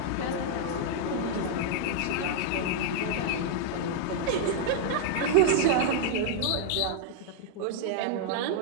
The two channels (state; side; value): different; both; correlation -0.01